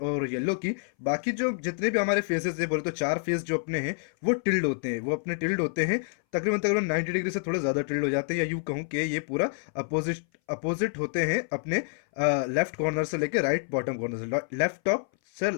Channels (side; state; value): right; silent; 59 dB below the other